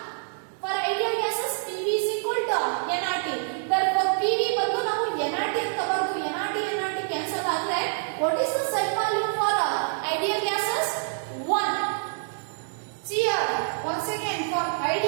For ideal gases PV is equal to nRT. Therefore PV ಬಂದು ನಾವು nRT ಅಂತ ಬರೆದು nRT ಕ್ಯಾನ್ಸಲ್ ಆದ್ರೆ what is the Z value for ideal gases? 1. See here, once again, for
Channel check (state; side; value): silent; left; digital silence